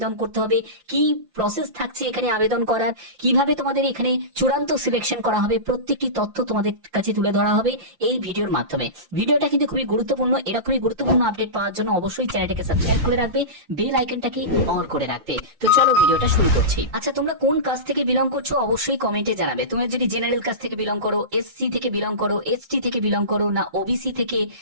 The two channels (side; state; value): left; late; 5.7 ms